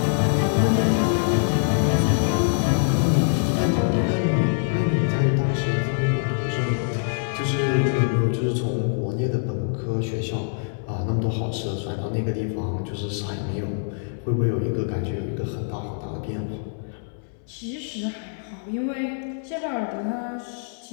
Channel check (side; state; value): right; silent; 62 dB below the other